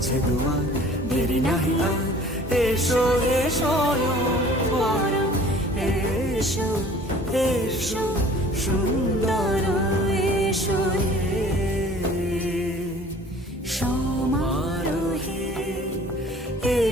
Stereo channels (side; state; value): both; normal; correlation 0.49